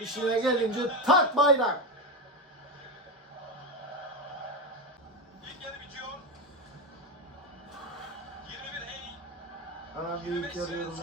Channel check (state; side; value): normal; both; correlation 0.15